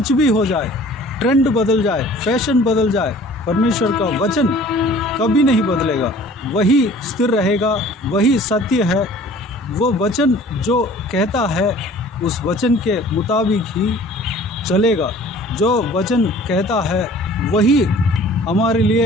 भी हो जाए, ट्रेंड बदल जाए, फैशन बदल जाए, परमेश्वर का वचन कभी नहीं बदलेगा। वही स्थिर रहेगा, वही सत्य है। वो वचन जो कहता है उस वचन के मुताबिक ही चलेगा। जो वचन कहता है वही हमारे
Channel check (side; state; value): both; normal; correlation 0.49